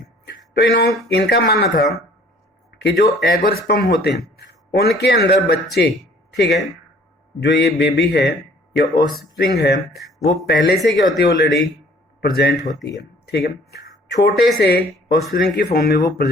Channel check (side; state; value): both; normal; correlation 0.55